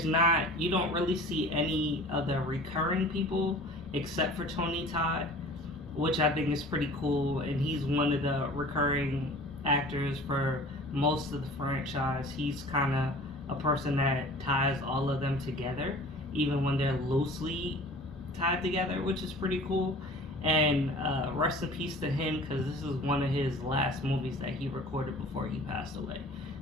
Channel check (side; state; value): both; normal; correlation 0.44